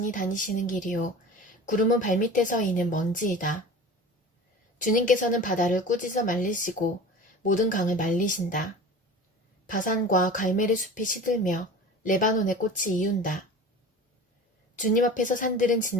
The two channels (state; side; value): normal; both; correlation 0.37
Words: 다니시는 길이요. 구름은 발밑에서 이는 먼지이다. 주님께서는 바다를 꾸짖어 말리시고 모든 강을 말리신다. 바산과 갈멜의 숲이 시들며 레바논의 꽃이 이운다. 주님 앞에서 산들은